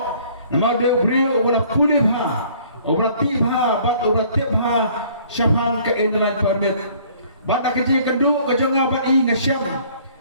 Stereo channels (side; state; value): both; inverted; correlation -0.56